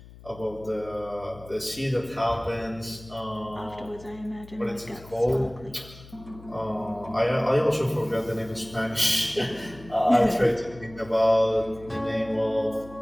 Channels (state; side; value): noise; left; hum, 19 dB below the sound